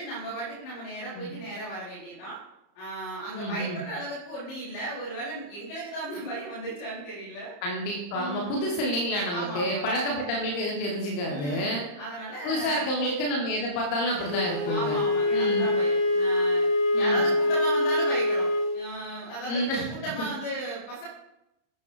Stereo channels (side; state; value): right; late; 34 ms